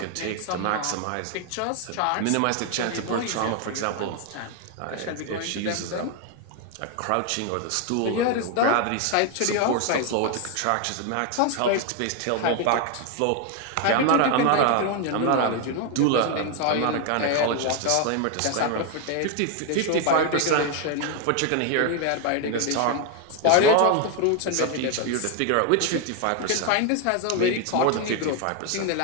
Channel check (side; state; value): both; different; correlation 0.01